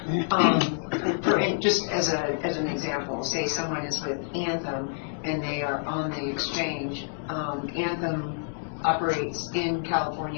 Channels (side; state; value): right; silent; digital silence